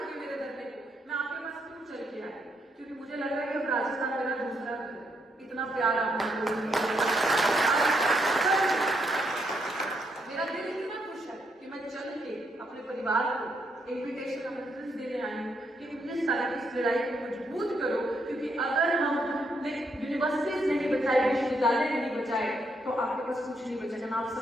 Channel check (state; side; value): normal; both; correlation 0.76